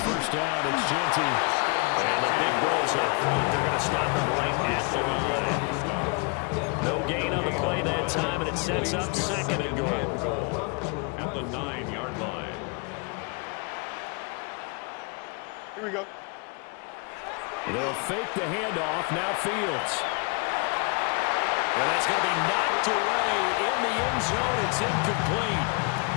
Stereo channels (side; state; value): right; quieter; 31.9 dB